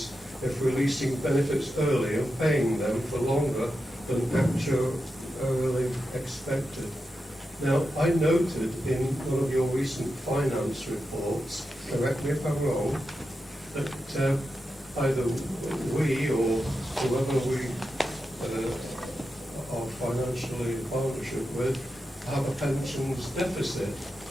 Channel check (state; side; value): normal; both; correlation 0.89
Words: if releasing benefits early and paying them for longer than actually expected. Now, I noted in one of your recent finance reports, correct me if I'm wrong, that either we or whoever we are financially in partnership with have a pensions deficit.